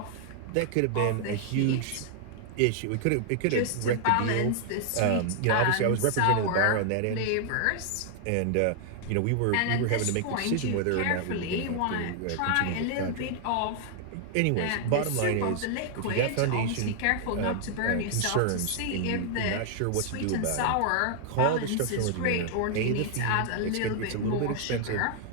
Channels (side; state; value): both; different; correlation 0.00